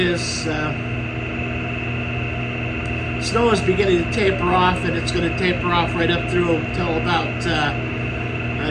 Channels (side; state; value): both; identical; correlation 1.00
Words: snow is beginning to taper off, and it's going to taper off right up through until about